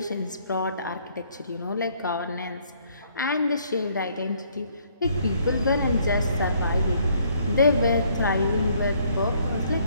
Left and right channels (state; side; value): inverted; both; correlation -0.65